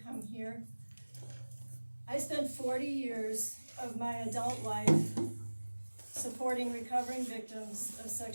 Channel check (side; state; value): both; inverted; correlation -1.00